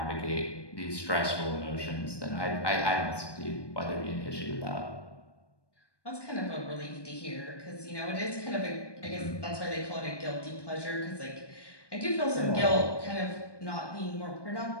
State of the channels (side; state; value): right; late; 1.2 ms